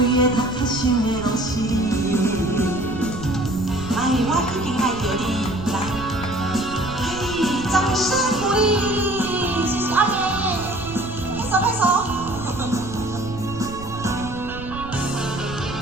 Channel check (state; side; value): noise; right; rumble, 12 dB below the sound